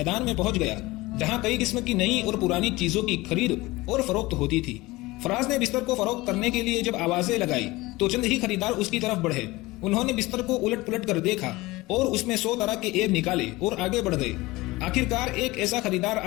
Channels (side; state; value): right; quieter; 20.7 dB